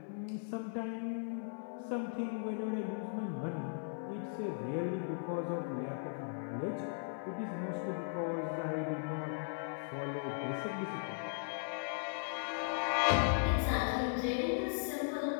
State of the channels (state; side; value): silent; right; 52 dB below the other